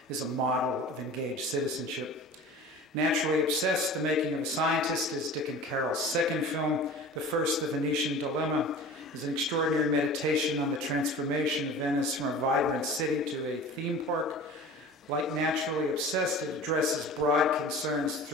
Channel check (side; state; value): both; normal; correlation 0.39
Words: is a model of engaged citizenship. Naturally obsessed, The Making of a Scientist is Dick and Carole's second film. The first, The Venetian Dilemma, is an extraordinary meditation on the transformation of Venice from a vibrant city to a theme park. Like Naturally Obsessed, it addresses broad concerns